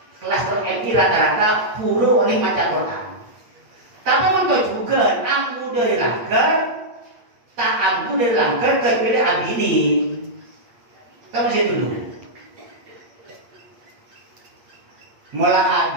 Kelas telok SD rata-rata puru oleh maca Quran. Tapi untuk juga ambu dari langgar, tak ambu dari langgar kecuali abini. Kamu sih dulu. Mula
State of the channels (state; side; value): late; left; 8.5 ms